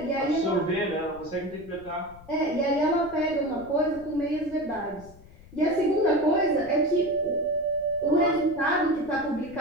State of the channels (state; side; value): noise; left; rumble, 21 dB below the sound